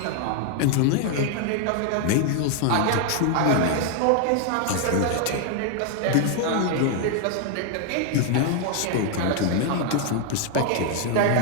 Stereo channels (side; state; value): both; different; correlation 0.00